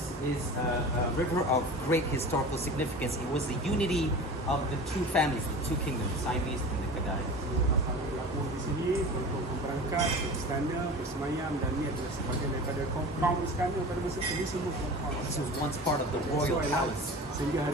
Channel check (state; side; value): normal; both; correlation 0.35